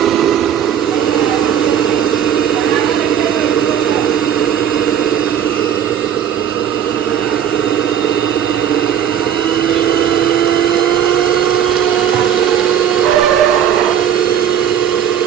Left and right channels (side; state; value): left; quieter; 9.2 dB